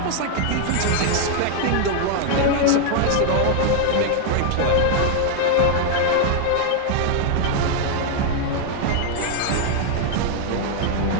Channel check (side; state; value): both; different; correlation 0.00